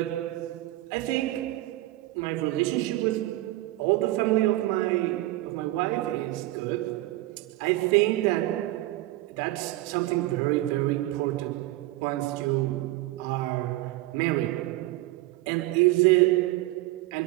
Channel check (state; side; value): quieter; left; 17.6 dB